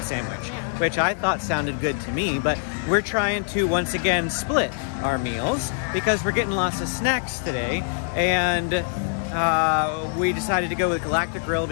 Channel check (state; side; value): silent; right; 60 dB below the other